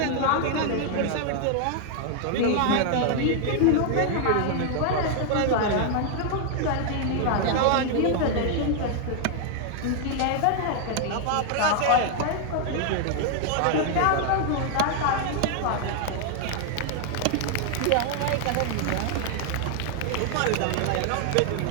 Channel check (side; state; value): both; different; correlation 0.00